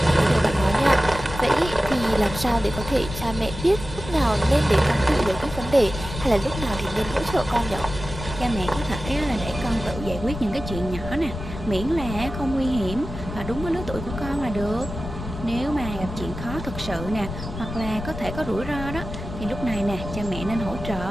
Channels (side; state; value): left; noise; rumble, 9 dB below the sound